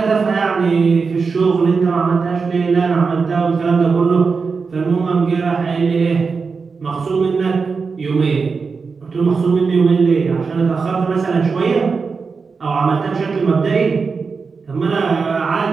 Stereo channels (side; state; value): left; quieter; 4.9 dB